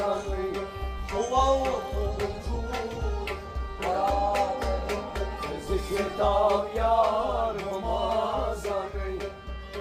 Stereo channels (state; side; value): identical; both; correlation 1.00